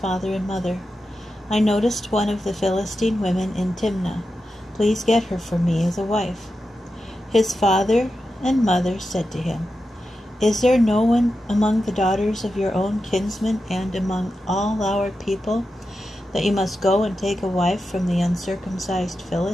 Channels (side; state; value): both; normal; correlation 0.90